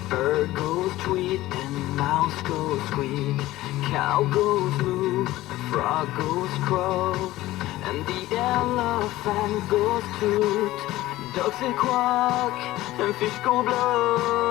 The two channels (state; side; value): quieter; right; 16.6 dB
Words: bird goes tweet, and mouse goes squeak. Cow goes moo, frog goes crow, and the elephant goes toot. Ducks say quack, and fish go